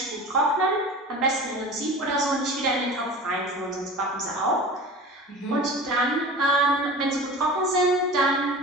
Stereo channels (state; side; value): normal; both; correlation 0.36